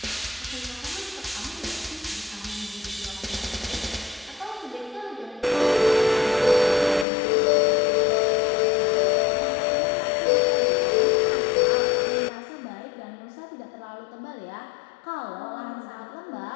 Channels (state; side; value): drops out; right; at 7.1 s